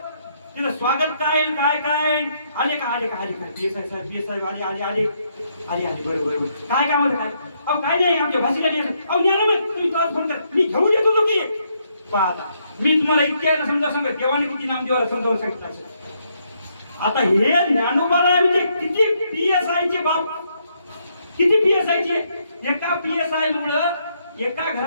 तिथं स्वागत काय काय काय आले का आले का आले का PSI साहेब आले आले आले आले आले बरोबर काय काम होतं काय अहो काय नाही आमच्या भाषेला अहो न्या ना मग तुम्ही तुला फोन कर मी घेऊन येतो तो की पाहता मी तुम्हाला इतक्या समजा सांगत देवाने किती नामदेवाला समजावून सांगितलं असेल. आता हे ज्ञानोबाला म्हणजे किती PSI चे बाप किती PSI चे. एका PSI मुळे एका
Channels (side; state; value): both; inverted; correlation -0.75